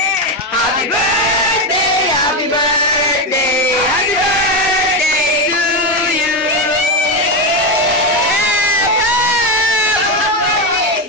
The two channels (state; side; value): normal; both; correlation 0.10